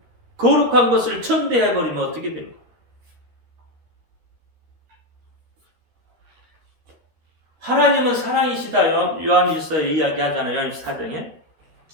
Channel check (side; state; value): left; late; 13 ms